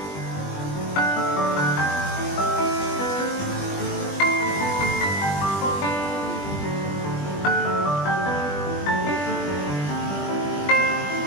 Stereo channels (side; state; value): right; late; 20 ms